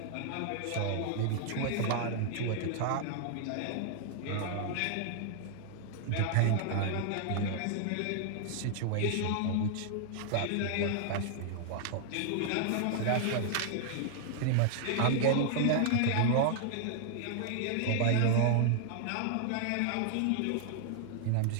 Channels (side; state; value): both; different; correlation 0.00